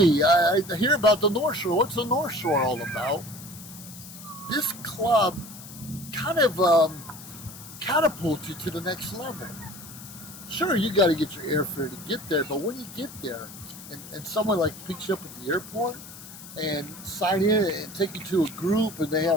I hear about the North Shore. What's the North Shore all about? This club kind of catapults you to the next level. Sure, you got to get your airfare to get there, but when you get there, and someone like picks you up at the airport and sign in and take you to a group, and they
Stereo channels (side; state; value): left; noise; hiss, 15 dB below the sound